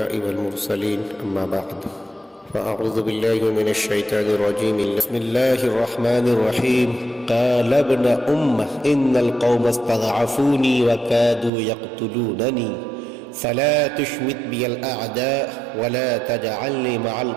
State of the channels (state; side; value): drops out; left; at 11.5 s